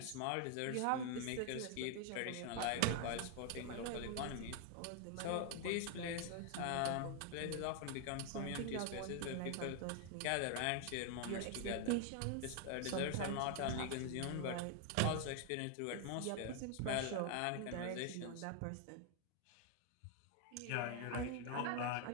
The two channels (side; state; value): both; different; correlation 0.00